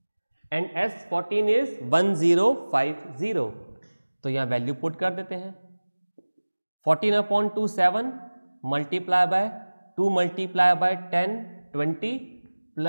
and S14 is 1050. तो यहां वैल्यू पुट कर देते हैं. 14/2 7 multiply by 2 multiply bye 10 20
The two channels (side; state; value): both; inverted; correlation -1.00